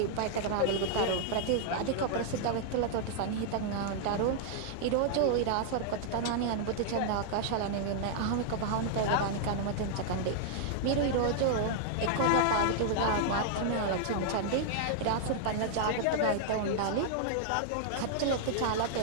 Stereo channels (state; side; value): different; both; correlation -0.01